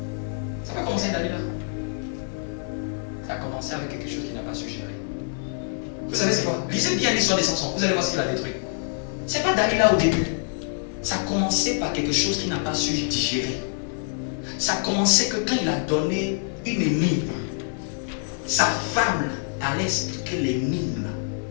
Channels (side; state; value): right; silent; digital silence